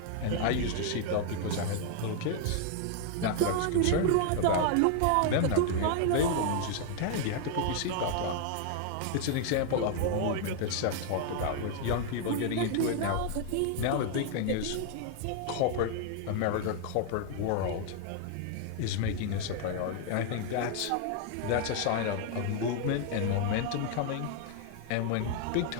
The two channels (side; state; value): both; different; correlation 0.00